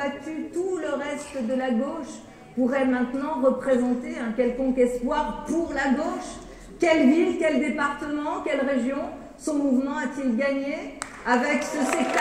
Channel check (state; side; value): identical; both; correlation 1.00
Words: tout le reste de la gauche, pourrait maintenant représenter un quelconque espoir pour la gauche? Quelle ville, quel département, quelle région son mouvement a-t-il gagné avec ce